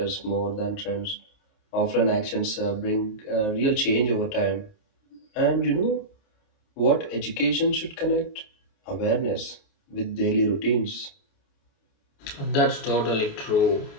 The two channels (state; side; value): late; right; 28 ms